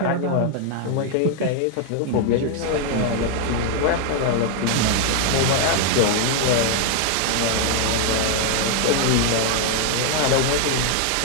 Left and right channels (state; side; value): different; both; correlation 0.00